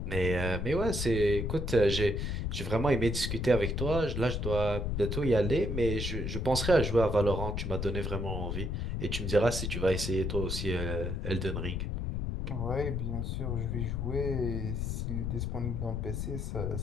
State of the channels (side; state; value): left; noise; rumble, 2 dB below the sound